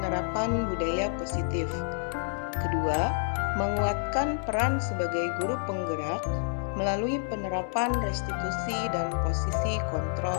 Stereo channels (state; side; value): silent; right; digital silence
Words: budaya positif. Kedua, menguatkan peran sebagai guru penggerak melalui penerapan restitusi dan posisi